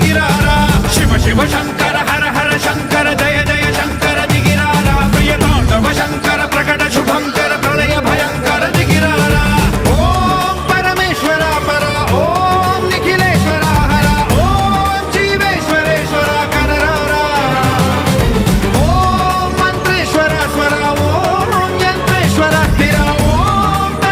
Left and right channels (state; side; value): identical; both; correlation 1.00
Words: शिव शिव शंकर हर हर शंकर जय जय शंकर दिगिरारा प्रिय तांडव शंकर प्रकट शुभंकर प्रणय भयंकर दिगिरारा ओम परमेश्वरा परा ओम निखिलेश्वरा हरा ओम जीवेश्वरेश्वरा कनरारा ओम मंत्रेश्वरा स्वरा ओम यंत्रेश्वरा स्थिरा ओम